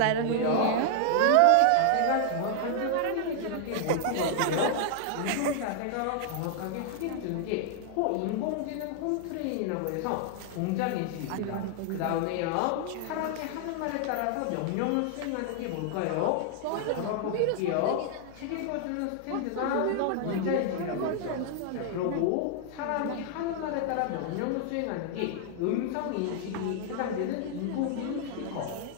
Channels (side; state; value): both; different; correlation 0.00